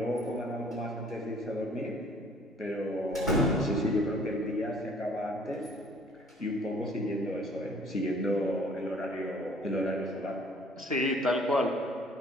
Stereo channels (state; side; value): normal; both; correlation 0.56